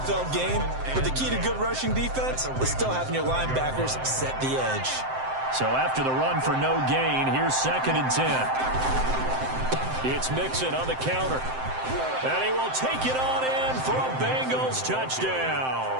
game, but the key to good rushing defense is still having your linebackers set the edge. So after the run for no gain, here's 2nd and 10. It's Mixon on the counter. And he will take it on in for a Bengals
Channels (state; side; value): late; left; 7.7 ms